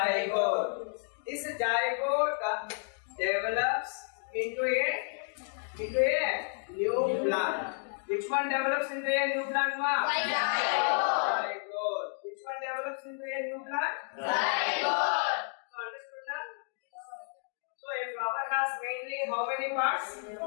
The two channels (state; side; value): silent; right; 57 dB below the other